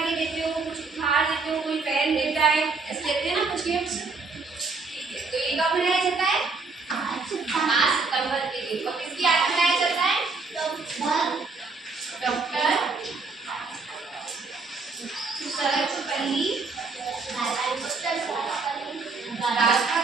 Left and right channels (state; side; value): quieter; left; 4.2 dB